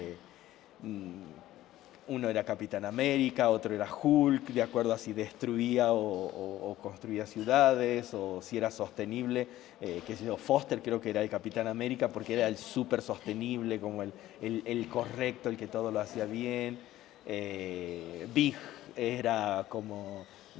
uno era Capitán América, otro era Hulk, de acuerdo a si destruía o construía ciudades, o si era sostenible, qué sé yo, Foster creo que era el Capitán América porque era el súper sostenible, como el correcto, el que todo lo hacía bien. Big era como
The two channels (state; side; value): quieter; right; 14.7 dB